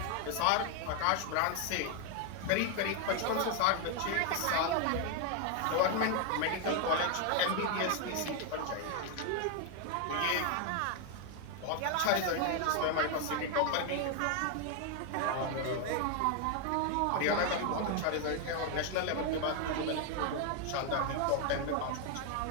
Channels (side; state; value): both; different; correlation 0.01